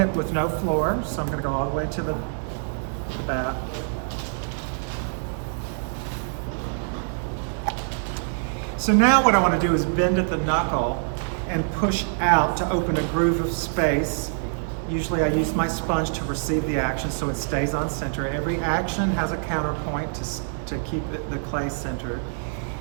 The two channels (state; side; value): silent; left; 62 dB below the other